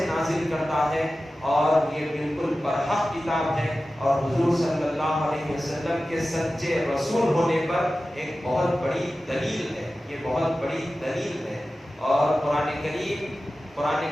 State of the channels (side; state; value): both; normal; correlation 0.95